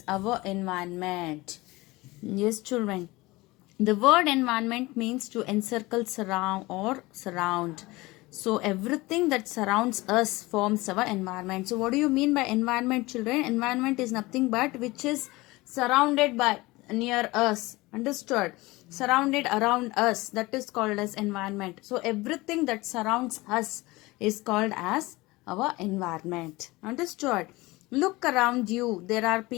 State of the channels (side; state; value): right; quieter; 21.4 dB